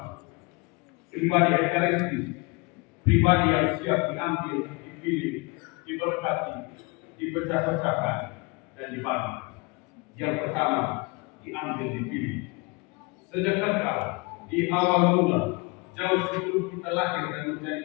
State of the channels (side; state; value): right; quieter; 27.6 dB